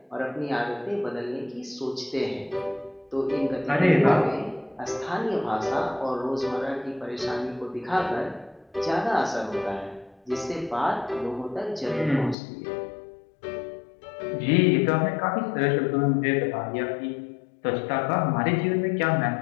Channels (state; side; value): drops out; right; at 12.4 s